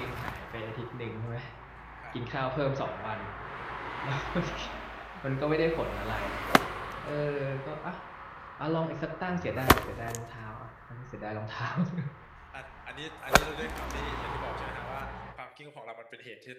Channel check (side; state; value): both; identical; correlation 1.00